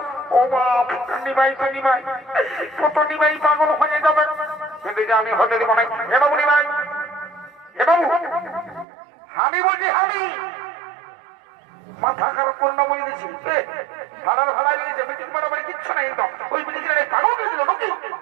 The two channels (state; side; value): drops out; left; at 8.8 s